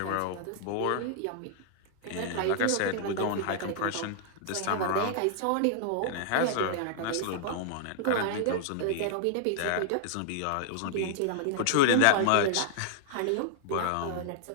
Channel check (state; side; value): different; both; correlation -0.01